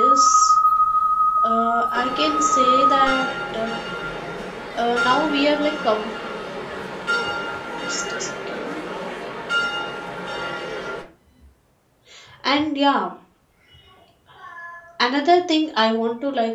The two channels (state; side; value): identical; both; correlation 1.00